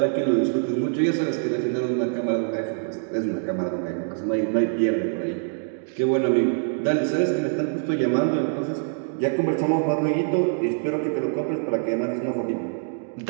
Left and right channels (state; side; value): silent; left; digital silence